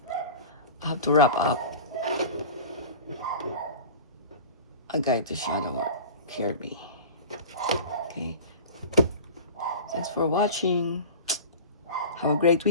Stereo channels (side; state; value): both; inverted; correlation -0.35